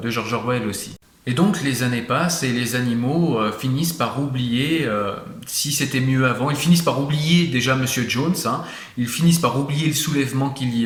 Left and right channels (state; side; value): identical; both; correlation 1.00